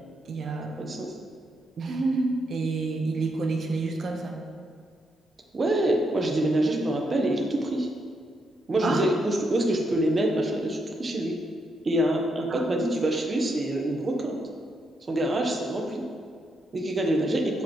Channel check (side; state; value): both; normal; correlation 0.79